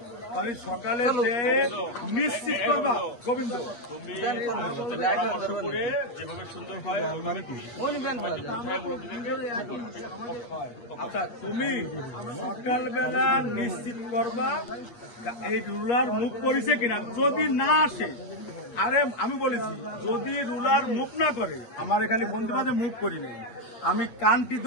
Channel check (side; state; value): right; late; 8.5 ms